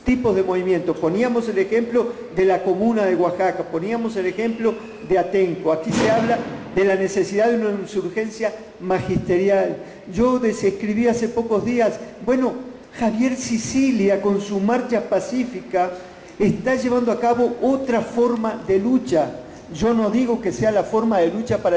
tipos de movimientos. Poníamos el ejemplo de la comuna de Oaxaca, poníamos el ejemplo de Atenco. Aquí se habla de la necesidad de una insurgencia magisterial. Yo describí hace pocos días, bueno, Javier Sicilia con su marcha pacífica está llevando a cabo otra forma de lucha. Yo no digo que sea la forma de lucha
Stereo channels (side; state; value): both; identical; correlation 1.00